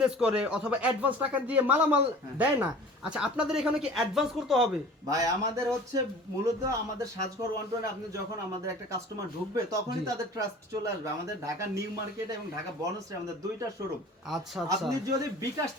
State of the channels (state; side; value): normal; both; correlation 0.43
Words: করে অথবা অ্যাডভান্স টাকা দিয়ে মালামাল দেয় না, আচ্ছা আপনাদের এখানে কি অ্যাডভান্স করতে হবে? ভাই আমাদের হচ্ছে মূলত আমাদের সাজঘর 120 আপনি যখন আমাদের একটা কাস্টমার ঢুকবে তখনই জি। তাদের ট্রাস্ট চলে আসবে। আমাদের ঢাকা নিউ মার্কেট এবং ঢাকা বনশ্রী আমাদের দুইটা শোরুম। আচ্ছা আচ্ছা আপনি যদি বিকাশ